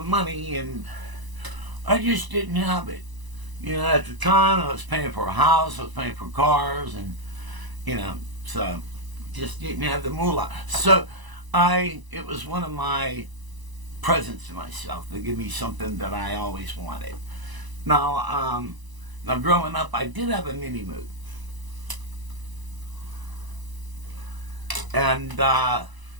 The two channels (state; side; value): late; left; 1.0 ms